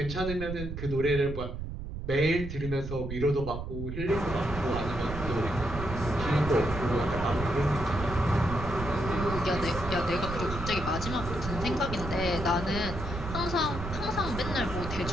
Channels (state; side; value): noise; right; rumble, 7 dB below the sound